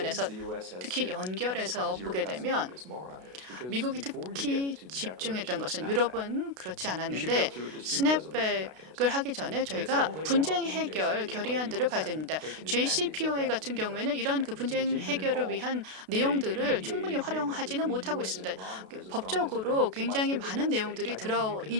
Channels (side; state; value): left; late; 32 ms